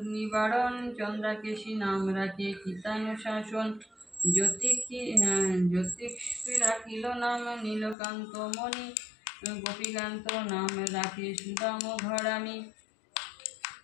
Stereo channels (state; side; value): drops out; right; at 8.0 s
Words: নিবারণ, চন্দ্রাকেশী নাম রাখে কীতানুশাসন, জ্যোতিষী রাখিল নাম নীলকান্ত মণি, গোপীকান্ত নাম রাখে সুদাম ঘরামি,